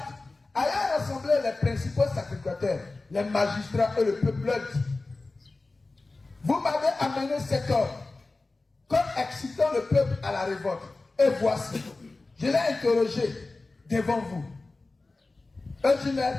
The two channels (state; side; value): quieter; right; 3.4 dB